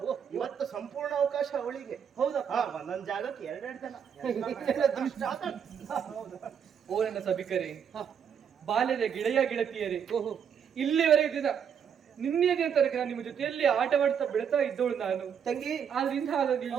ಇವತ್ತು ಸಂಪೂರ್ಣ ಅವಕಾಶ ಅವಳಿಗೆ. ಹೌದಪ್ಪ. ಹಾ, ಒಂದೊಂದ್ ಜಾಗಕ್ಕೆ ಎರಡೆರಡು ಜನ. ಓ ನನ್ನ ಸಭಿಕರೇ, ಬಾಲ್ಯದ ಗೆಳೆಯ ಗೆಳತಿಯರೇ, ಇಲ್ಲಿವರೆಗೆ ದಿನ ನಿನ್ನೆ ದಿನ ತನಕ ನಾನು ನಿಮ್ಮ ಜೊತೆಯಲ್ಲಿ ಆಟವಾಡ್ತಾ ಬೆಳ್ತಾ ಇದ್ದವಳು ನಾನು. ತಂಗಿ ಆದ್ರಿಂದ ಅವ್ರು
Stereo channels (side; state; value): left; quieter; 7.7 dB